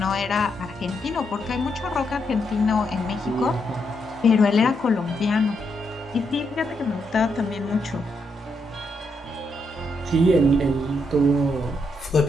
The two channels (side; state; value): both; normal; correlation 0.79